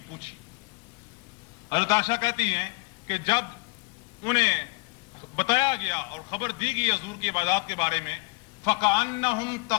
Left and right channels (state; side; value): quieter; right; 28.2 dB